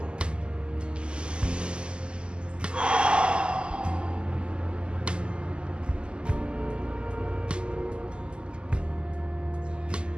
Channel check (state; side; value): late; left; 0.050 ms